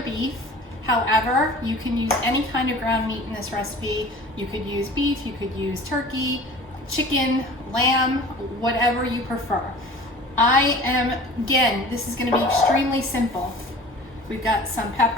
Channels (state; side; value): normal; both; correlation 0.43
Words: However, you can use any kind of ground meat in this recipe. You could use beef, you could use turkey, chicken, lamb, whatever you prefer. Again, this is gonna be extremely simple. We've got some